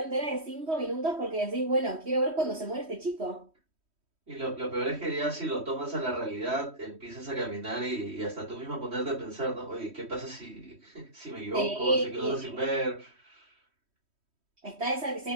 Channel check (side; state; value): left; late; 3.1 ms